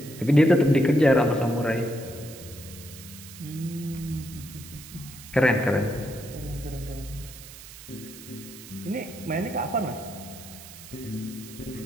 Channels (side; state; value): right; noise; hiss, 16 dB below the sound